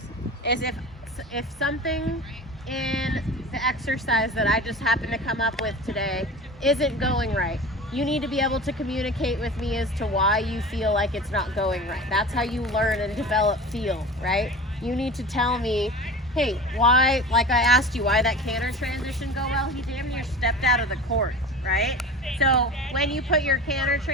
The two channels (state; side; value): normal; both; correlation 0.34